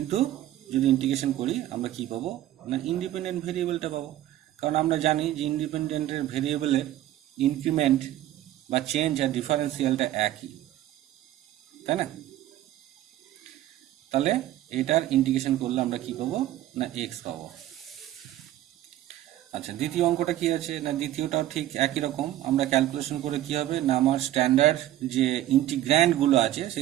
যদি ইন্টিগ্রেশন করি আমরা কি পাবো না, ইন্ডিপেন্ডেন্ট ভেরিয়েবলটা পাবো। কারণ আমরা জানি যে ইন্ডিপেন্ডেন্টের ভেরিয়েবলের ইনক্রিমেন্ট বা চেঞ্জ আর ডিফারেন্সিয়ালটা একই, তাই না। তাহলে এটার ইন্টিগ্রেশন করলে আমরা কি পাবো না, এক্স পাবো। আচ্ছা, দ্বিতীয় অঙ্কটা কি আছে না, দ্বিতীয়টাও ঠিক একই রকম, আমরা ক্যালকুলেশন করে কি হবে না, আমার স্ট্যান্ডার্ড যে ইন্টিগ্র্যান্ডগুলো আছে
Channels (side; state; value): left; quieter; 13.7 dB